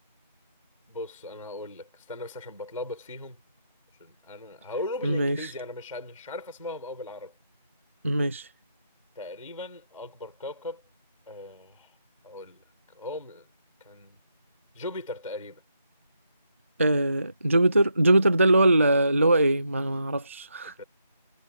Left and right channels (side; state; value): both; inverted; correlation -0.80